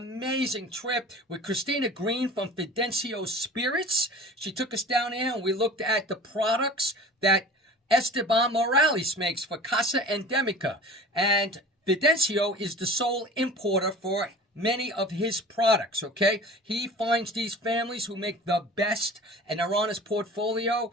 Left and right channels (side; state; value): both; normal; correlation 0.40